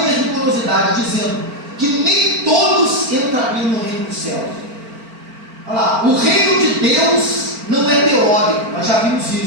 rigorosidade, dizendo que nem todos entrariam no reino dos céus? Olha lá, o reino de Deus não é teórico, nós já vimos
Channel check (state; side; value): late; left; 4.4 ms